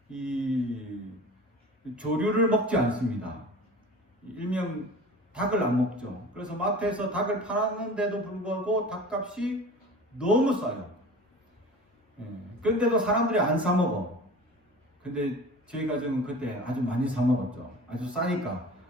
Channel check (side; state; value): both; normal; correlation 0.38